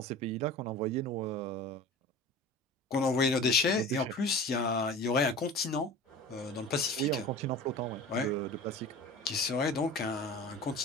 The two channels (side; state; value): both; normal; correlation 0.37